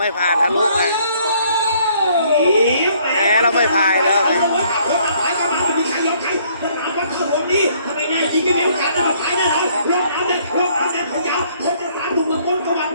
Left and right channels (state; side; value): inverted; both; correlation -0.63